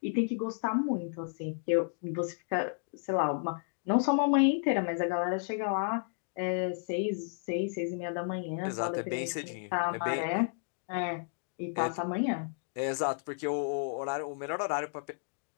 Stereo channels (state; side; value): silent; right; digital silence